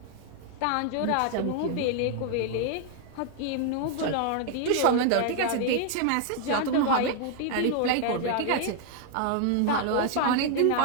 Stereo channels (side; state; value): both; different; correlation 0.00